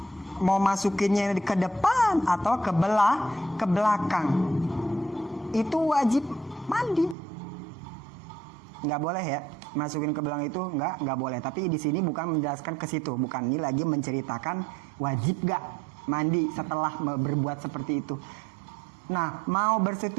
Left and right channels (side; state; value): left; drops out; at 7.2 s